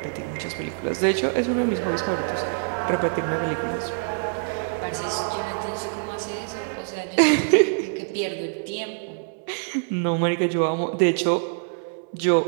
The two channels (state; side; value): silent; left; digital silence